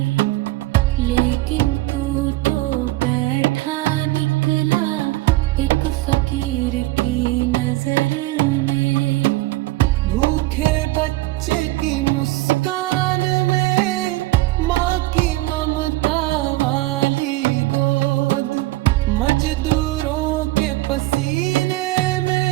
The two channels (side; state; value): left; quieter; 18.8 dB